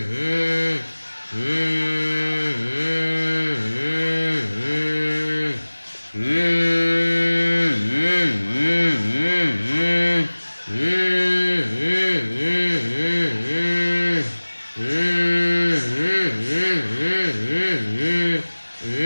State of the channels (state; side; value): inverted; both; correlation -1.00